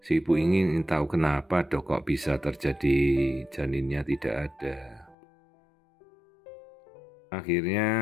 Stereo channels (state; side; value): drops out; right; at 5.2 s